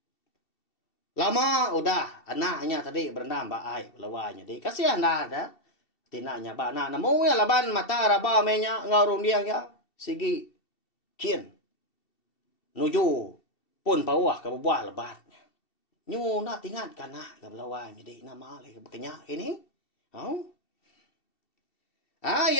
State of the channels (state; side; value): late; right; 2.7 ms